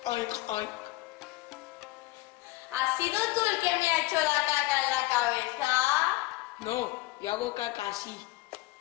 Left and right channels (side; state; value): right; quieter; 19.6 dB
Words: Oink, oink. ¿Has sido tú el que me ha hecho la caca en la cabeza? No, yo hago caca así.